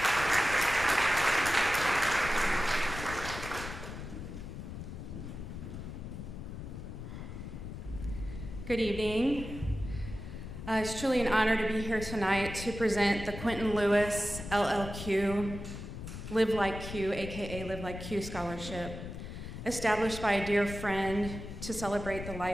Good evening. It's truly an honor to be here tonight to present the Quentin Lewis LLQ, Live Like Q, aka Live Like Q Scholarship, established by a dear friend to celebrate the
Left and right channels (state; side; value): noise; left; rumble, 9 dB below the sound